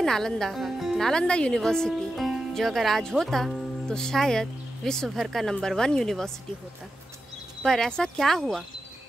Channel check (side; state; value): both; normal; correlation 0.90